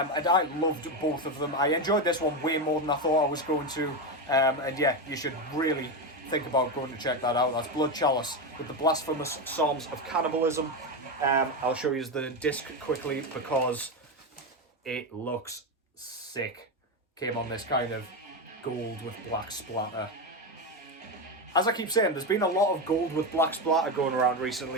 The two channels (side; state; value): both; normal; correlation 0.13